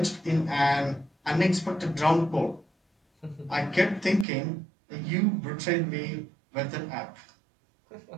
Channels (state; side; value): drops out; left; at 4.2 s